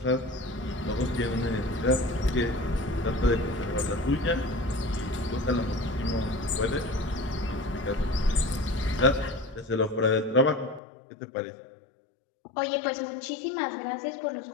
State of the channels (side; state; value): right; drops out; at 10.8 s